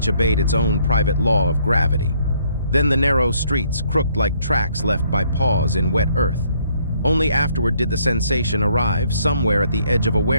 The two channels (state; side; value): inverted; both; correlation -0.67